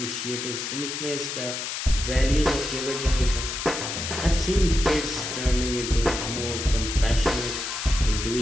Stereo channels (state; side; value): noise; left; hiss, 4 dB below the sound